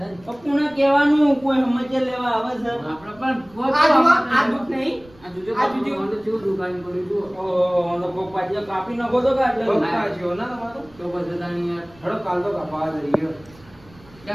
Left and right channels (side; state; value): right; noise; rumble, 25 dB below the sound